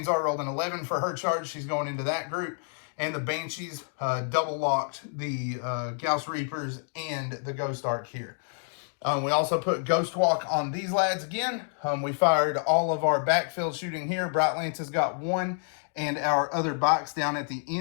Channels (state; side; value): silent; right; 55 dB below the other